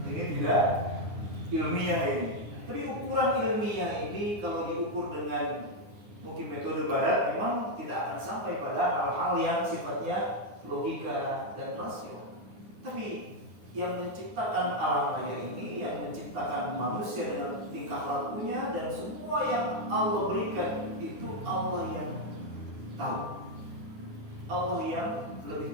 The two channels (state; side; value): late; left; 9.7 ms